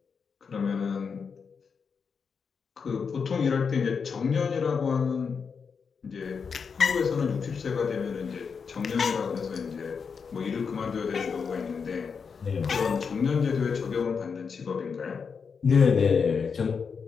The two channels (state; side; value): quieter; right; 5.9 dB